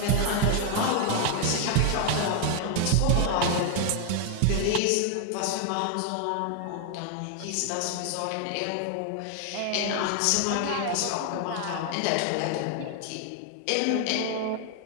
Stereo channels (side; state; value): both; different; correlation 0.00